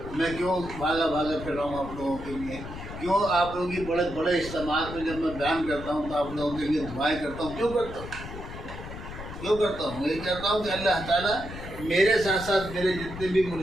میں کیوں بھاگا پھر رہا ہوں آپ لوگوں کے لیے، کیوں آپ لوگوں کی بڑے بڑے اجتماعات میں جب میں بیان کرتا ہوں تو آپ لوگوں کے لیے دعائیں کرتا ہوں، کیوں کرتا ہوں؟ یہ کرتا ہوں کہ اللہ تعالیٰ میرے ساتھ ساتھ میرے جتنے بھی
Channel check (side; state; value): left; noise; rumble, 11 dB below the sound